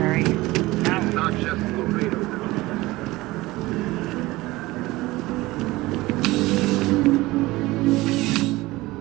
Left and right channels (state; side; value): quieter; left; 19.6 dB